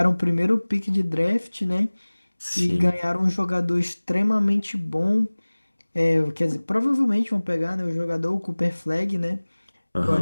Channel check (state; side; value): inverted; both; correlation -1.00